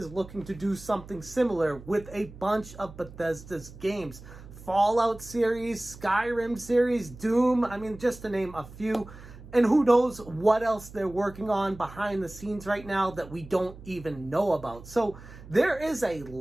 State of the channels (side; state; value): right; noise; hum, 17 dB below the sound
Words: looking to do something similar with a bunch of Bethesda's games. Fallout series, Skyrim series, Doom, just to name a few. And who knows what else they're working on behind the scenes right now that we don't even know about. So there is a